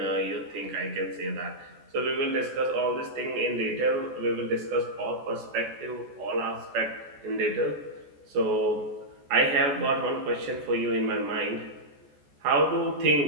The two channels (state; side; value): late; left; 14 ms